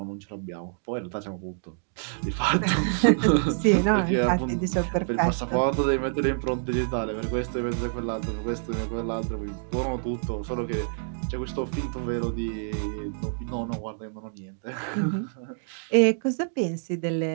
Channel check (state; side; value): silent; left; digital silence